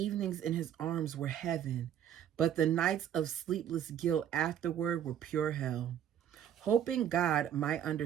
in his arms were heaven, but the nights of sleepless guilt afterward were pure hell. Hoping God might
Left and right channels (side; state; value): left; quieter; 9.9 dB